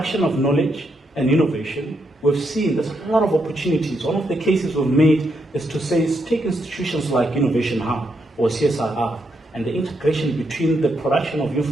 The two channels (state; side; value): normal; both; correlation 0.79